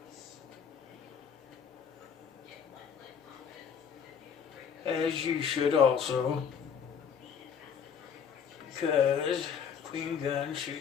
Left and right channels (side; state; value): right; quieter; 7.3 dB